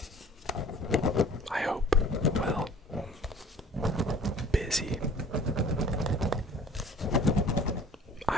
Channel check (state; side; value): normal; both; correlation 0.49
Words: I hope, well, busy.